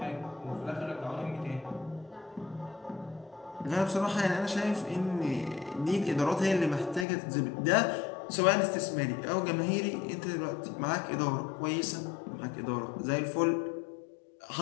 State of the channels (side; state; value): right; drops out; at 7.1 s